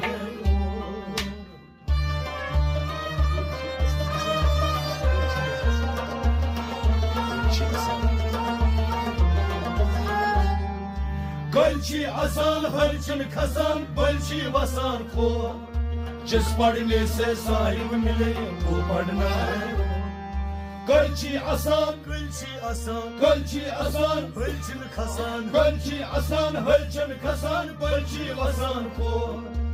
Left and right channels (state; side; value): identical; both; correlation 1.00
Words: है गलची आसान हरचन खसान बलची वसान खो जिस पढ़ने से साहिब मिले वो पढ़ना है गलची आसान Gölçi asan, गलची आसान bölçün kasan गलची आसान हरचन खसान बलची वसान खो